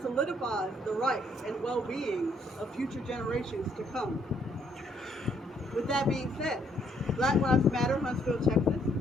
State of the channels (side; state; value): both; normal; correlation 0.68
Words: solidifies the rights and well-being of future generations to come. With that being said, Black Lives Matter Huntsville, Texas